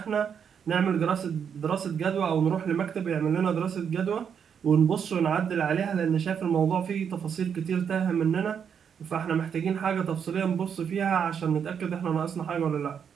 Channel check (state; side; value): quieter; left; 7.5 dB